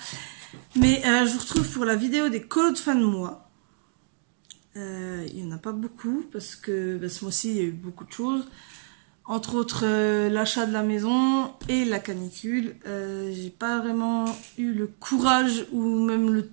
Mais je vous retrouve pour la vidéo des colos de fin de mois. Il n'y en a pas beaucoup parce que ce mois-ci, il y a eu beaucoup de choses. Entre autres, l'achat de la maison et la canicule. J'ai pas vraiment eu le courage ou même le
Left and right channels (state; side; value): silent; left; digital silence